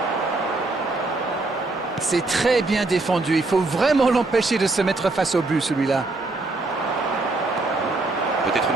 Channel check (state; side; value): quieter; left; 3.2 dB